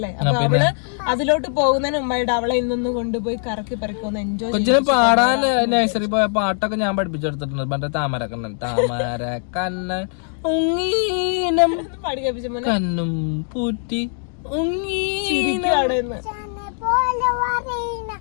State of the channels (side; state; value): right; silent; 63 dB below the other